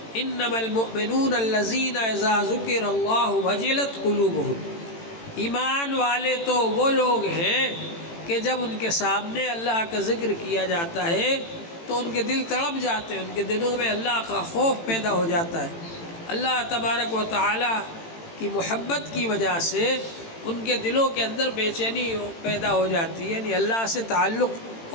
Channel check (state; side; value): late; right; 18 ms